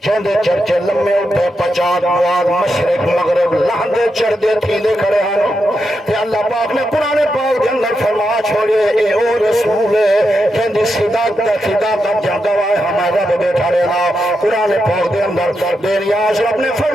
جندے چرچے لمے اٹھے پچات مواد مشرق مغرب لہندے چردے تھیلے کھڑے ہیں تے اللہ پاک نے قرآن پاک دے اندر فرما چھوڑے اے او رسول ہے جندی صداقت جنگوائے ہمیں رب بیٹھا رہنا قرآن پاک دے اندر بے نیاز رب نے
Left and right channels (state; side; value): normal; both; correlation 0.85